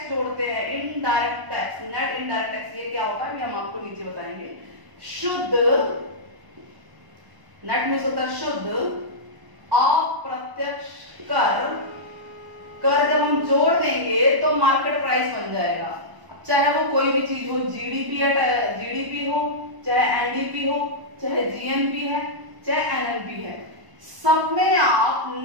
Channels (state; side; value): late; left; 1.0 ms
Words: जोड़ते हैं, indirect tax, net indirect tax, ये क्या होता है ये हम आपको नीचे बताएंगे। शुद्ध नेट में होता है शुद्ध अप्रत्यक्ष कर, कर जब हम जोड़ देंगे तो मार्केट प्राइस बन जाएगा। चाहे वो कोई भी चीज हो, GDP हो, चाहे NDP हो, चाहे GNP है, चाहे NNP है, सब में आप